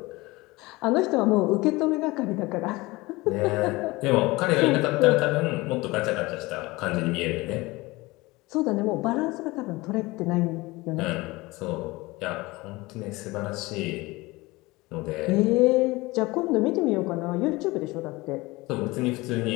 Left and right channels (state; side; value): quieter; right; 21.8 dB